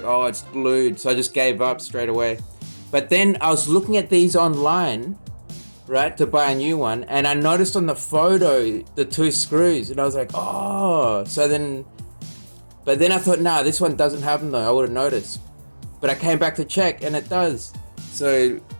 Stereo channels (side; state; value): both; inverted; correlation -1.00